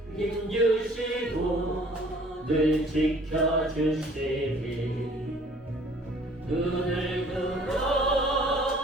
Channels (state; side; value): normal; both; correlation 0.54